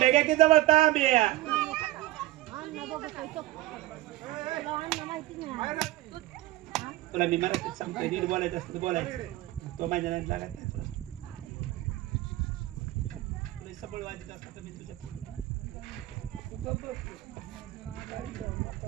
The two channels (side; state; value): left; quieter; 17.1 dB